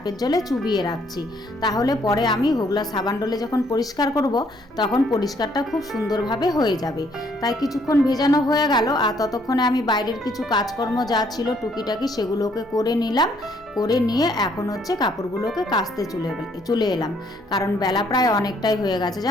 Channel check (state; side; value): normal; both; correlation 0.67